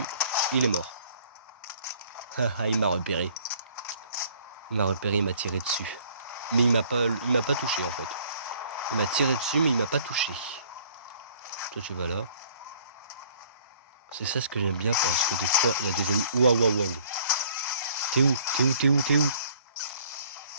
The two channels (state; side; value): inverted; both; correlation -0.57